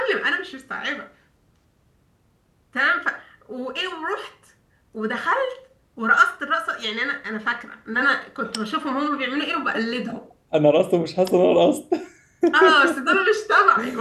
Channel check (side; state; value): both; identical; correlation 1.00